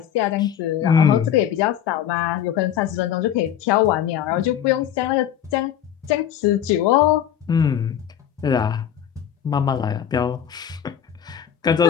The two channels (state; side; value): quieter; right; 9.7 dB